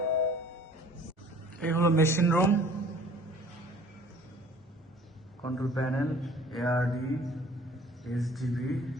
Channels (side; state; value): both; normal; correlation 0.51